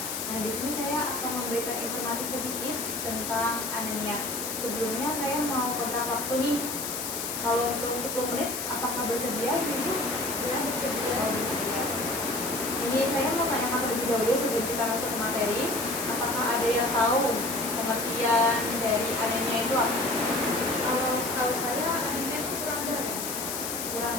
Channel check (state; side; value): noise; left; hiss, 4 dB below the sound